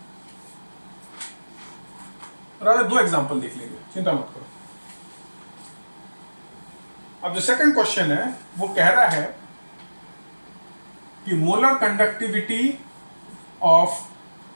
रादर दो एग्जांपल देख लेंगे, चिंता मत करो। अब जो सेकंड क्वेश्चन है वो कह रहा है कि molar conductivity of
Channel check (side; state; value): both; inverted; correlation -1.00